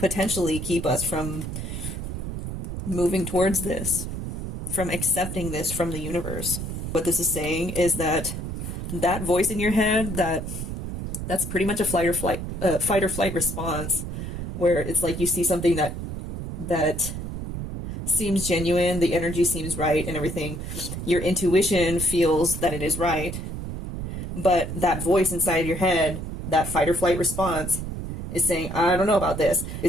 keep us from moving towards this, from accepting this from the universe. What this is saying is that that voice in your head, that's pretty much a fight or flight response, where it's like you see something that seems genuine, the energy seems right and everything. Your intuition feels that it is right, but that voice inside your head, that fight or flight response, is saying, I don't know about this.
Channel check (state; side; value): noise; right; rumble, 6 dB below the sound